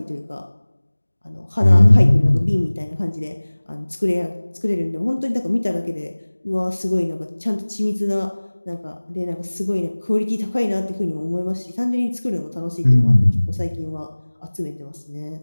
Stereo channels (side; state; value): both; inverted; correlation -1.00